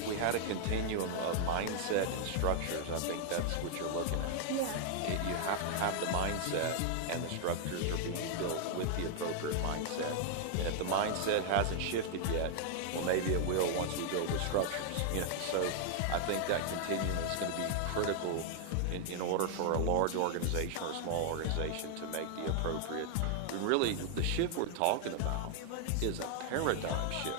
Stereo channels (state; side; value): different; both; correlation 0.00